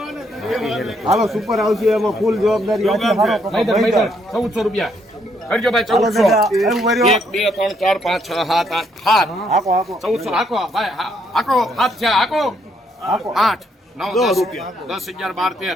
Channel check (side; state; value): both; normal; correlation 0.72